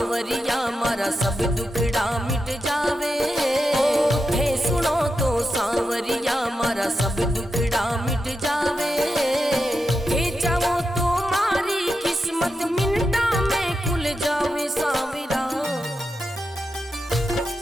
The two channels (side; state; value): both; normal; correlation 0.88